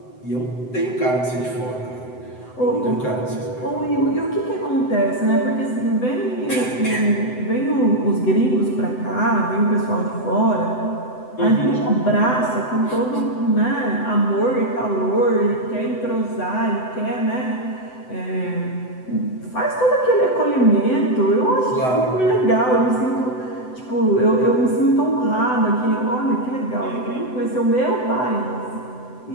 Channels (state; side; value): late; right; 7.9 ms